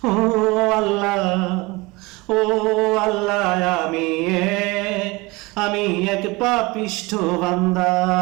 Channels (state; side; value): quieter; left; 23.8 dB